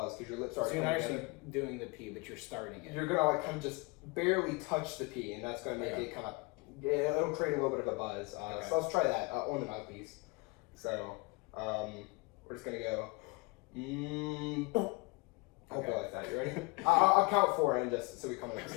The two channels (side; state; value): right; quieter; 26.6 dB